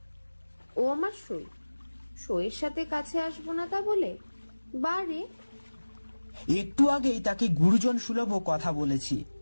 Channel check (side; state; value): both; inverted; correlation -1.00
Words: ও আমার সই, সইয়ের সাথে কাছে আসবো না তা বলে? বারে, একটু আগেই তাকে গুরুজন সুলভ কথা বলেছি,